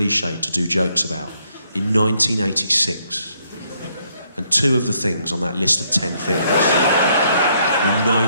to do jokes about in 1986. And 2 of the things on that list of 10 things in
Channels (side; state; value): both; inverted; correlation -0.71